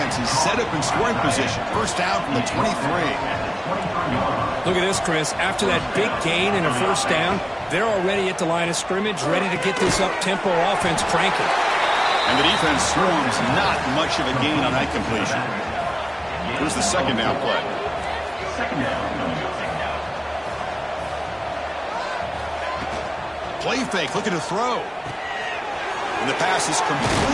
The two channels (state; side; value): identical; both; correlation 1.00